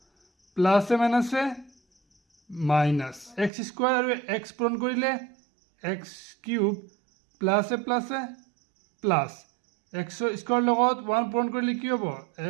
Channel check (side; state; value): left; drops out; at 3.5 s